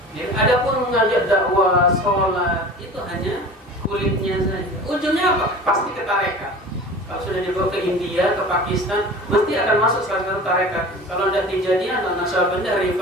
Adapun mengajak dakwah, sholat, itu hanya kulitnya saja. Ujungnya apa? Pasti ke tarekat. Kalau sudah dibawa ke India, ke Pakistan, mesti akan masuk salah satu tarekat. Kalau tidak Tijaniyah, Naqsyabandiyah,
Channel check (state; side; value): normal; both; correlation 0.38